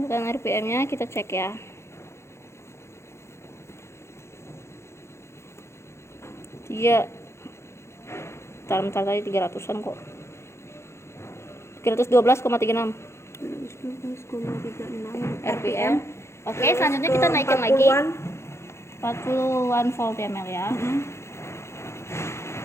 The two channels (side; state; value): right; late; 0.13 ms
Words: putaran RPM-nya kita cek ya. Bentar tadi 300-an kok. 312,36 12,36 RPM. Oke, selanjutnya kita naikkan lagi 40-an volt ya, Mel ya.